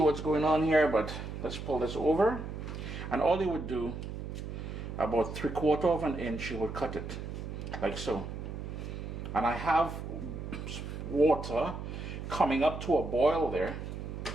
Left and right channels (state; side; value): noise; right; hum, 7 dB below the sound